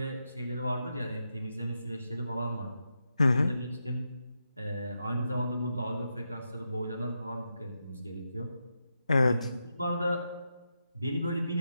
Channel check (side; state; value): both; inverted; correlation -0.86